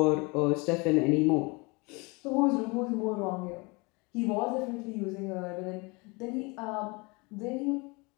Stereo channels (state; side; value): quieter; right; 27.6 dB